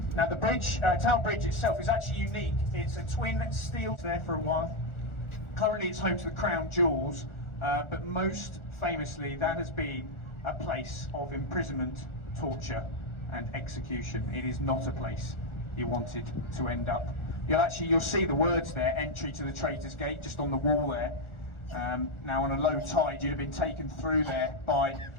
Now, the bridge, Tower Bridge itself is actually unique. It's a twin steel there for a while. Currently, it's home to the Crown Jewels, but most famously, that has been a place of imprisonment, torture and execution. It is not a place you wanted to end up. You'll see the words there, entry to the Traitor's Gate, just on the wall there. Now on a low tide you'd have been taken through there by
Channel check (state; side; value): late; right; 1.4 ms